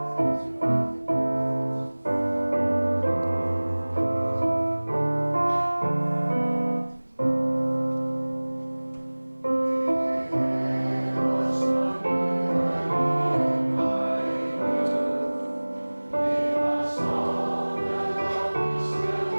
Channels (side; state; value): both; inverted; correlation -1.00